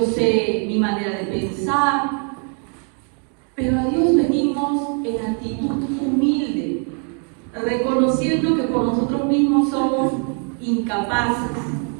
sé mi manera de pensar, pero a Dios venimos en actitud humilde, reconociendo que por nosotros mismos somos incapaces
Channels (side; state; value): left; quieter; 39.8 dB